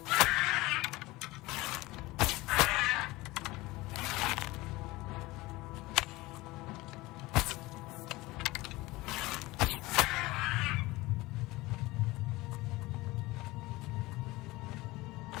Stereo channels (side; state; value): right; quieter; 20.3 dB